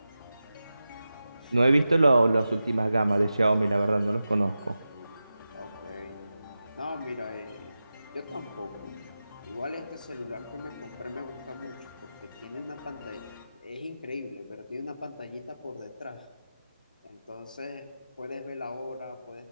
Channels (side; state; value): both; inverted; correlation -0.93